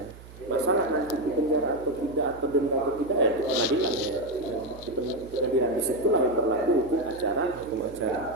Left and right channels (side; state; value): right; noise; hum, 18 dB below the sound